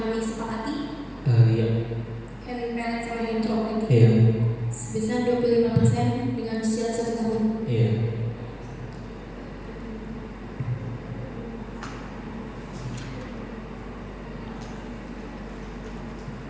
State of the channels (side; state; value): both; identical; correlation 1.00